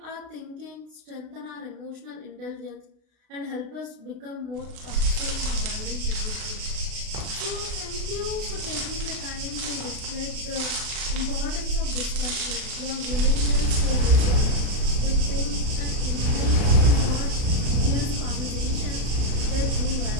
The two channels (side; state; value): left; late; 33 ms